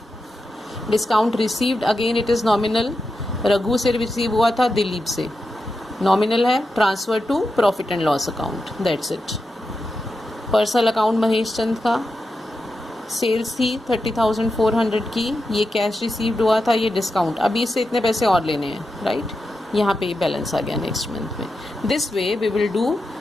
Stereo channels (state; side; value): normal; both; correlation 0.89